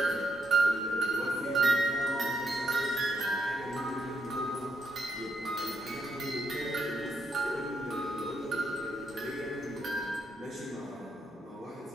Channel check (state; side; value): normal; both; correlation 0.80